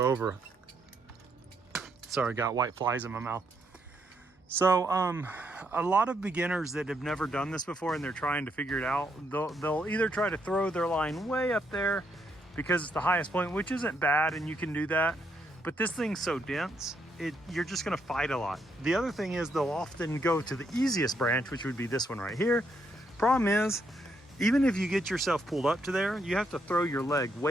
over. Sorry, I got white flies in my mouth. So a lot of beginners that have never done this before and they're trying to figure it out, they'll either try to throw their line way up there because it's the highest point, which isn't bad and you can do that, but this thing's so dense, you're just gonna fight a lot. The other thing is they'll often go to the easiest branch, which would be this one right here. Problem is, even if you get yourself pulled up to there, you have to throw your leg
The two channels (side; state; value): both; normal; correlation 0.76